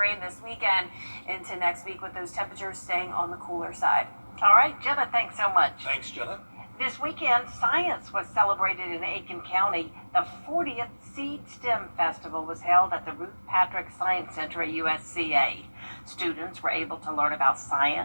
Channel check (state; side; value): inverted; both; correlation -1.00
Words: this weekend into next week with those temperatures staying on the cooler side. All right, Jenna, thanks so much. Thanks, Jenna. This weekend, science was celebrated in Aiken County. The 40th Seed STEM Festival was held at the Ruth Patrick Science Center at USCA. Students were able to learn about